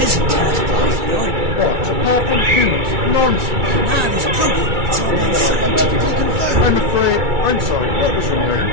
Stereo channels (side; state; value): left; late; 2.3 ms